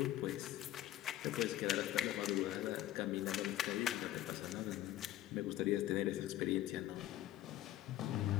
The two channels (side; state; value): right; quieter; 13.9 dB